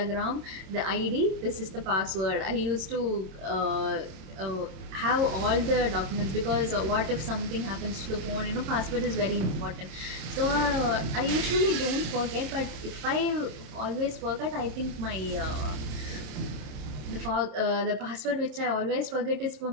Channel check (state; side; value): late; left; 27 ms